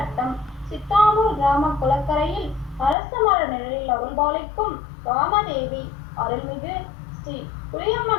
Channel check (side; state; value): right; drops out; at 3.0 s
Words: சித்தாமூர் கிராம குளக்கரையில் அரச மர நிழலில் அருள்பாலிக்கும் ராமதேவி அருள்மிகு ஸ்ரீ